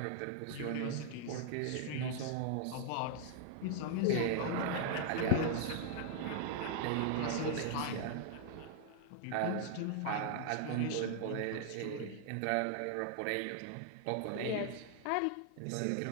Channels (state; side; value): different; both; correlation -0.01